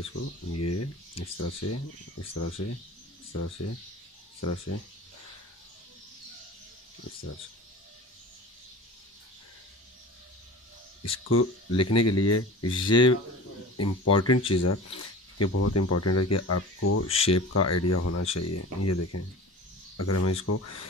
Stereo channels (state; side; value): normal; both; correlation 0.37